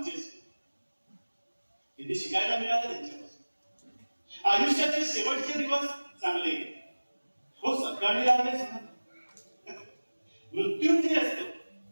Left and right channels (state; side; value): inverted; both; correlation -1.00